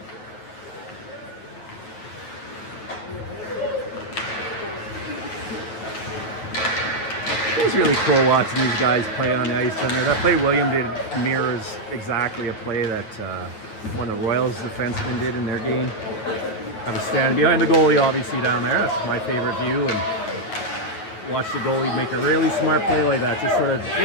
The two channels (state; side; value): late; right; 9.1 ms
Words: Those really cool watching these guys play on the ice down there. That play William did mirrors exactly a play that one of the Royals defensemen did in their game. I was standing behind the goalie, obviously, down there. That's my favorite view, and watch the goalie make a really smart play like that. Just sort of